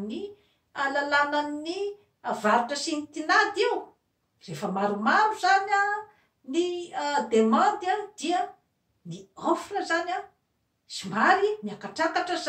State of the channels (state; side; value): identical; both; correlation 1.00